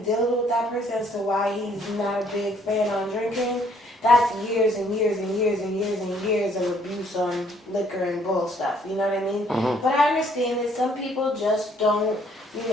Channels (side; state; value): both; normal; correlation 0.64